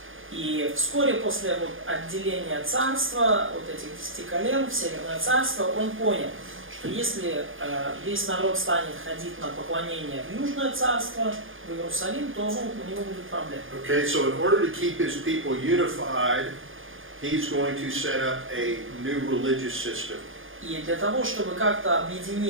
И вскоре после отделения царства, этих 10 колен в Северное царство, он понял, что если весь народ станет ходить на поклонение в Южное царство, в Иерусалим, то у него будут проблемы. Okay, so in order to keep his people unified, he's going to set up a new religious system. И для того, чтобы как-то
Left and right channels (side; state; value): left; late; 0.58 ms